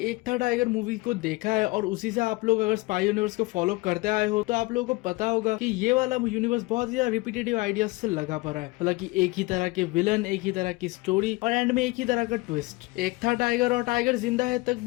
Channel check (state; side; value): quieter; right; 22.8 dB